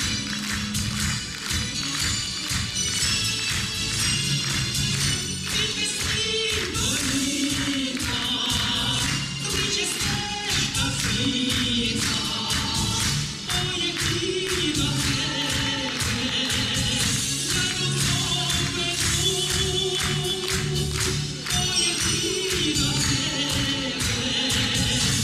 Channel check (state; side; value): identical; both; correlation 1.00